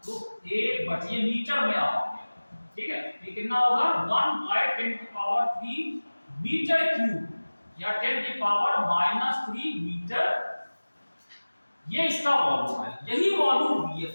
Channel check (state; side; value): inverted; both; correlation -1.00